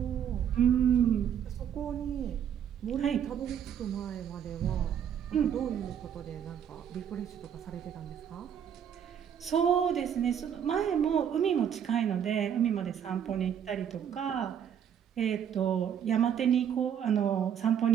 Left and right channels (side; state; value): left; quieter; 8.7 dB